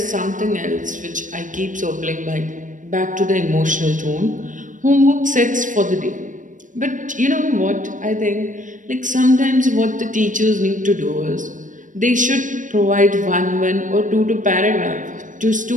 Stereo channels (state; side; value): late; left; 0.37 ms